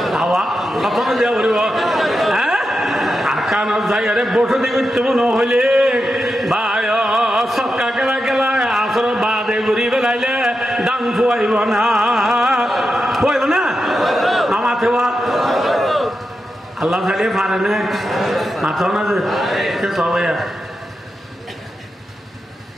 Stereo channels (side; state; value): both; normal; correlation 0.88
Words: হাওয়া তখন দিয়া উড়িব। হ্যাঁ, আর কানত যাই আরে বসে দিবি তো মনে হইলে বায় সক্কা কেলা কেলা আসর বাদে ঘুরি বেলাইলে দাম খুয়াইব না, খুয়াইব না মামাতে আল্লাহ চালিয়ে পারে না মাথা না যে সবাই।